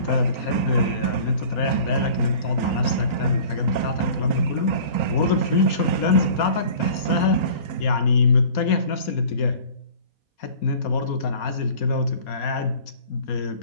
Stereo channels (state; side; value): late; right; 4.2 ms